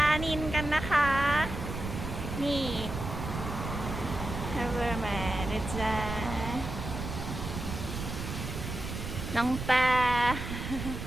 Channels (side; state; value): right; noise; rumble, 6 dB below the sound